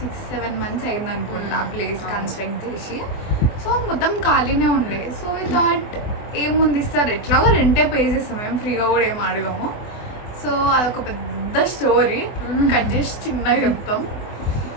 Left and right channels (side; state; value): right; late; 24 ms